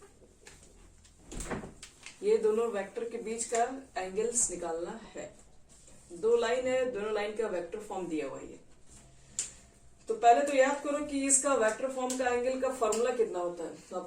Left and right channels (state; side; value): identical; both; correlation 1.00